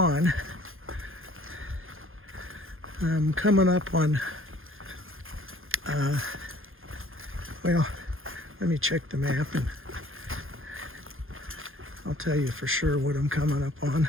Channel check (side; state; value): left; late; 0.60 ms